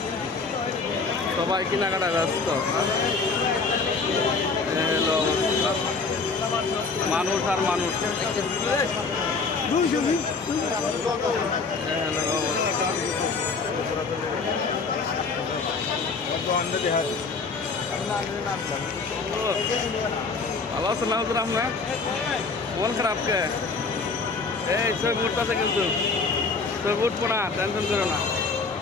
সবাই কেনাকাটা ব্যস্ত। হলো অবস্থা, মানুষ আর মানুষ। ভালো আছেন না হুজুর আপনার? মন খারাপ কে? এই ছবি উঠতেছে কিন্তু, ছবি উঠবো না, টেনশন করো না।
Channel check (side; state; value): right; quieter; 4.4 dB